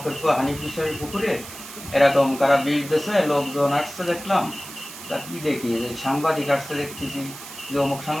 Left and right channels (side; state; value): right; noise; hiss, 13 dB below the sound